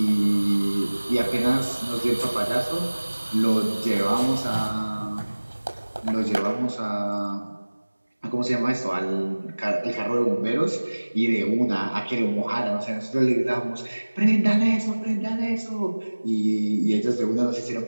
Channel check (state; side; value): inverted; both; correlation -1.00